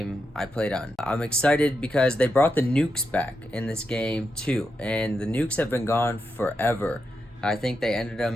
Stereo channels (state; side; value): normal; both; correlation 0.85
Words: I played on. I'm excited because they brought the nukes back in this game too, and the nukes have been gone forever. I think they ended them